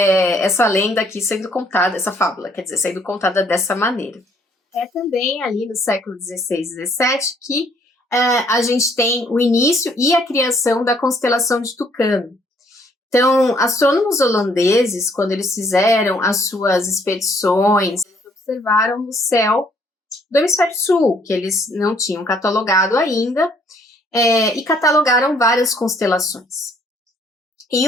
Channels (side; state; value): both; normal; correlation 0.64